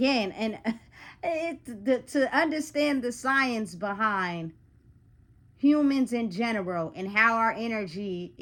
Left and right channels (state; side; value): identical; both; correlation 1.00